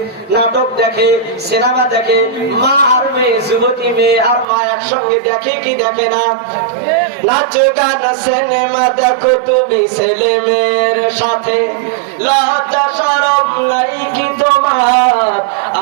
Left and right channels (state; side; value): drops out; left; at 4.5 s